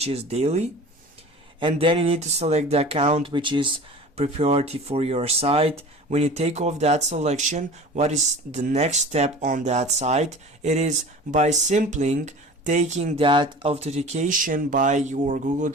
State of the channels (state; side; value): normal; both; correlation 0.39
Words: is daily, and then you need to select the account, which is priority for your site. When you take off that selection, what is the next step on that site? It is by simply taking that authentication by your Google